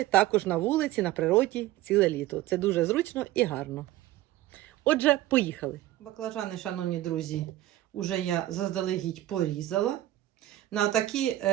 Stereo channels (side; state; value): left; quieter; 15.0 dB